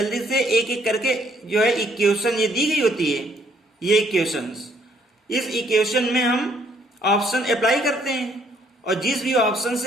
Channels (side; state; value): both; normal; correlation 0.66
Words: से एक एक करके जो है इक्वेशन ये दी गई होती है, ये इक्वेशंस, इस इक्वेशन में हम ऑप्शन अप्लाई करते हैं और जिस भी ऑप्शन